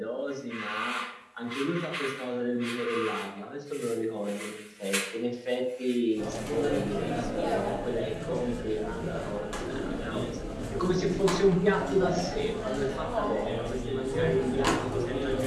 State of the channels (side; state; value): both; identical; correlation 1.00